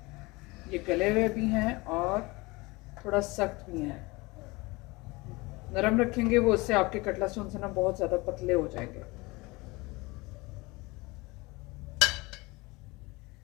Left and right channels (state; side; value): quieter; right; 23.9 dB